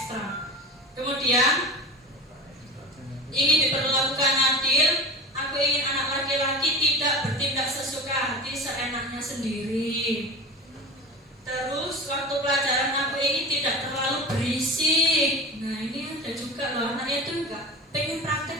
Kemudian ingin diperlakukan adil, aku ingin anak laki-laki tidak bertindak sesuka hati seenaknya sendiri. Terus waktu pelajaran aku ingin tidak terlalu berisik. Nah ini ada juga loh, anaknya itu enggak pengen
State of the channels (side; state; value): both; normal; correlation 0.30